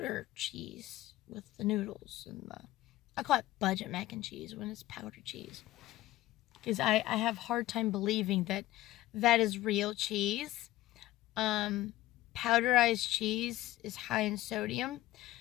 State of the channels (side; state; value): right; quieter; 16.1 dB